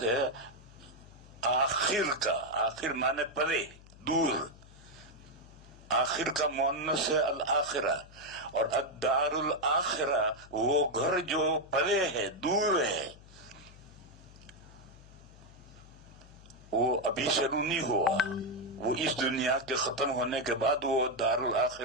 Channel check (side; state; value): left; noise; hum, 21 dB below the sound